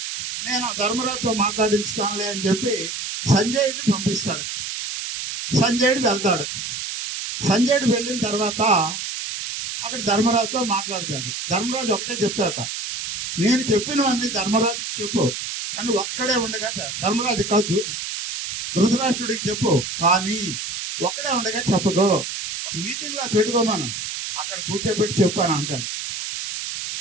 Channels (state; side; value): noise; right; hiss, 5 dB below the sound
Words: నేను ధర్మరాజుతో మాట్లాడించుతానులే అని చెప్పి సంజయుడిని పంపిస్తాడు. సంజయుడు వెళ్తాడు. సంజయుడు వెళ్ళిన తర్వాత అక్కడ ధర్మరాజుతో మాట్లాడతాడు. ధర్మరాజు ఒకటే చెప్తాడట, నేను చెప్పినవన్నీ ధర్మరాజుకి చెప్పు, కానీ ఒక్కడే ఉండగా ధర్మరాజు కాదు ధృతరాష్ట్రుడికి చెప్పు, కానీ ఒక్కడే ఉండగా చెప్పకో, మీటింగ్ లో పెట్టుకోమను, అక్కడ కూర్చోబెట్టి చెప్పాను అంటాడు.